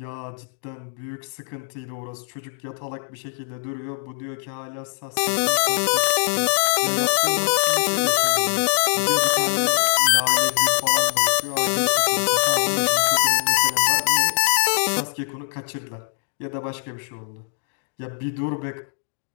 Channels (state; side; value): silent; right; digital silence